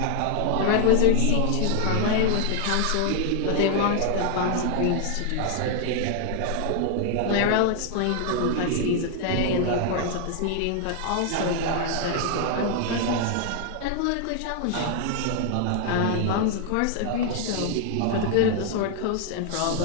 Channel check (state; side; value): different; both; correlation 0.00